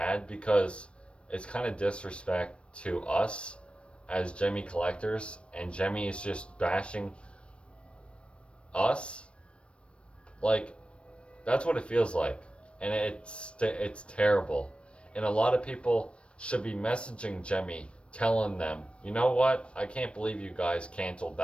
because it's kind of disrespect to us as Gemmy collectors, and Gemmy is just bashing us. Like, that's what it feels like, and it's terrible. And a lot of people should be messaging Gemmy, telling them, you know what? I can't believe you guys canceled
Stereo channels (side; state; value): right; late; 0.059 ms